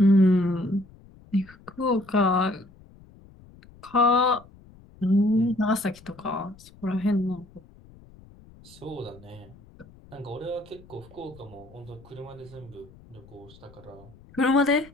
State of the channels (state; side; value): noise; left; rumble, 24 dB below the sound